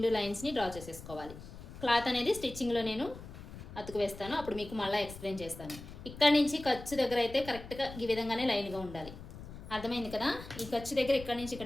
లైన్స్ని డ్రా చేసేసుకోవాలి. క్లాత్ అనేది స్టిచ్చింగ్లో నేను అతుకు వేస్తాను, అప్పుడు మీకు మళ్ళీ ఎక్స్ప్లెయిన్ చేస్తాను. ఇక్కడ నుంచి ఖర్చు దగ్గర అయితే కరెక్ట్గా ఈ విధంగానే లైన్గా ఉండాలి. అర్థమైంది కదా? ఈ ఖర్చు దగ్గర ఇక్కడ నుంచి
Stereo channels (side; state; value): left; noise; rumble, 13 dB below the sound